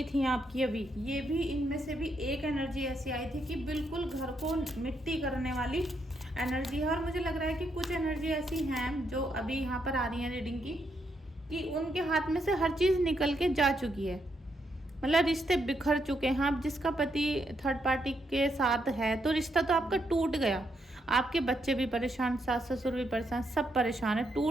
थी आपकी अभी, ये भी इनमें से भी एक एनर्जी ऐसी आई थी कि बिल्कुल घर को मिट्टी करने वाली एनर्जी है। और मुझे लग रहा है कि कुछ एनर्जी ऐसी हैं जो अभी यहाँ पर आ रही हैं रीडिंग की, कि उनके हाथ में से हर चीज़ निकल के जा चुकी है, मतलब रिश्ते बिखर चुके हैं। आप जिसका पति थर्ड पार्टी के साथ है तो रिश्ता तो आपका टूट गया, आपके बच्चे भी परेशान, सास ससुर भी परेशान, सब परेशान है,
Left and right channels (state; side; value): normal; both; correlation 0.78